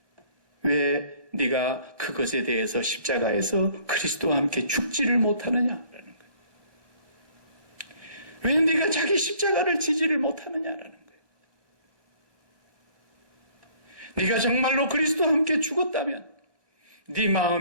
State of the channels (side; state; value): left; late; 1.1 ms